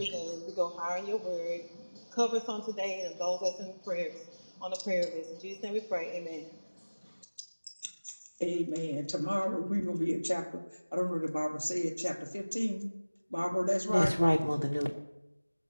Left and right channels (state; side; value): inverted; both; correlation -1.00